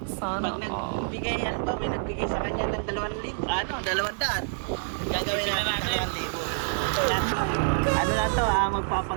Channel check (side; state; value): left; silent; digital silence